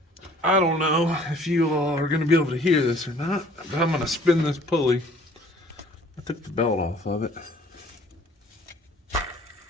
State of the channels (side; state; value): both; normal; correlation 0.54